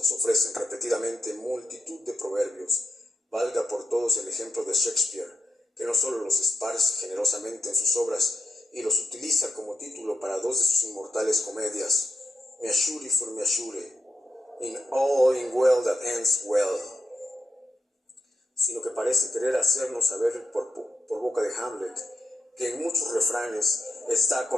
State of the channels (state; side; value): normal; both; correlation 0.83